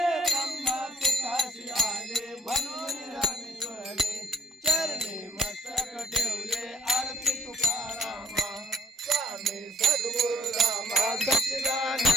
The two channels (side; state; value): both; normal; correlation 0.62